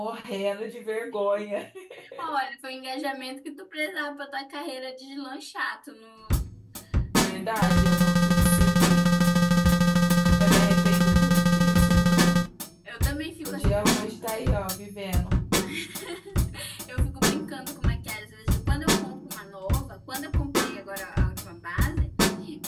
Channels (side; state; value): both; identical; correlation 1.00